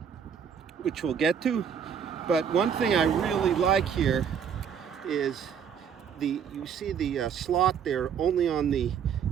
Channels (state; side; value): quieter; left; 7.7 dB